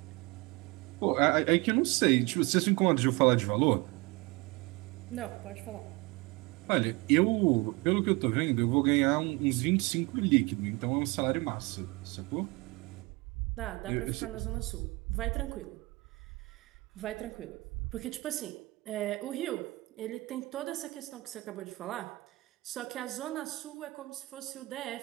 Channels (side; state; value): left; quieter; 23.9 dB